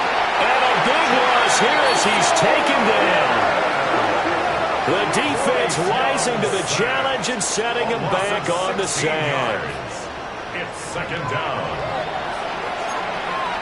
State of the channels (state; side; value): identical; both; correlation 1.00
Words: And a big loss here as he's taken down. The defense rising to the challenge and setting him back on the sand. It's 2nd down.